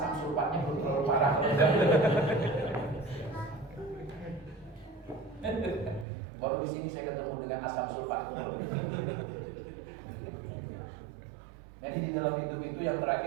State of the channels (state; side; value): drops out; left; at 6.1 s